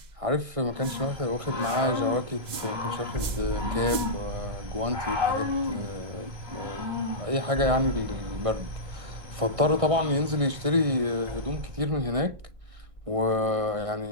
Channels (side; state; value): left; late; 2.0 ms